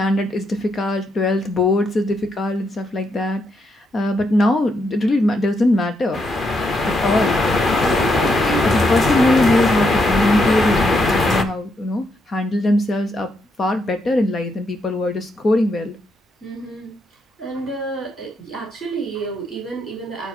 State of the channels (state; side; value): normal; both; correlation 0.79